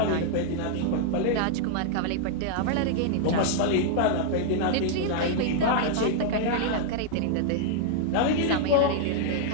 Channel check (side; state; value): both; different; correlation -0.01